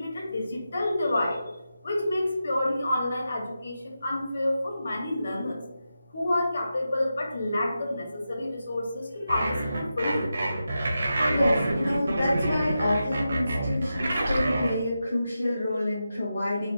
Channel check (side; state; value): both; inverted; correlation -0.89